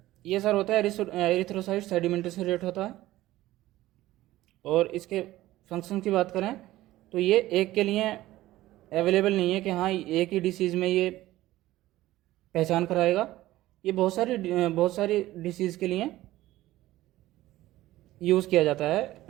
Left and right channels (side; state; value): left; quieter; 16.0 dB